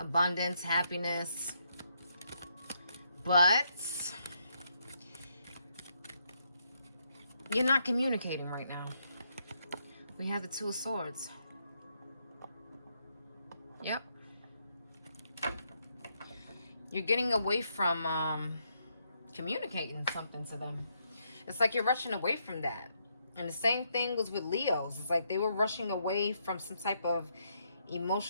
happiness. But you're not communicating right now. We have the Two of Swords. Yep. You're getting away from communicating something to them. It's like you're rushing away from that. And the same thing was with Leos. It's like they were rushing away from some type of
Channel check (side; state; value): both; inverted; correlation -0.77